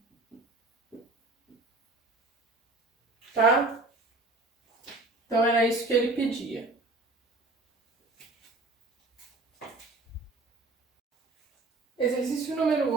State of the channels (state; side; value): quieter; left; 3.2 dB